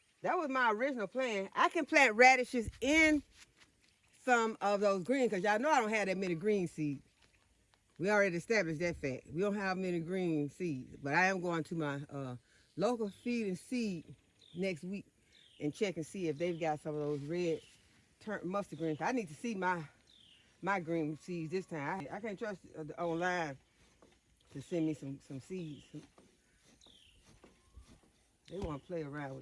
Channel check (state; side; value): identical; both; correlation 1.00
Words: That was my original plan. I can plant radishes in some of those greens, because y'all know I don't have that many green seeds. We already established that fact. We don't have many green seeds, but I am going to my local feed and seed next week and check and see if they've got some of those red mustard greens. I need to see my green seeds this time. I can't trust online to send me some seeds. They want to play around